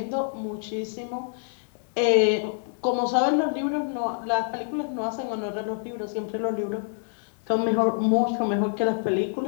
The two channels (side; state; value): right; silent; 59 dB below the other